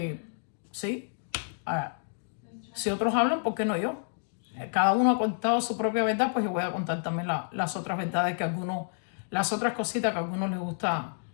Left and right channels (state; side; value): silent; right; digital silence